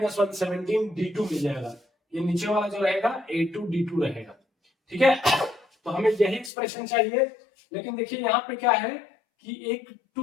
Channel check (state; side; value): drops out; right; at 6.5 s